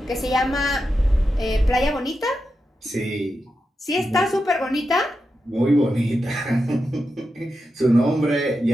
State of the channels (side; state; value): both; normal; correlation 0.88